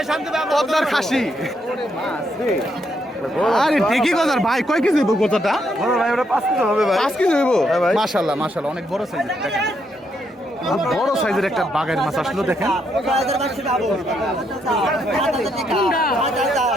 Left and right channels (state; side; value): normal; both; correlation 0.76